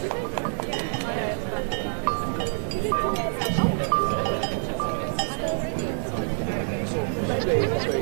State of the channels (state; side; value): silent; left; 61 dB below the other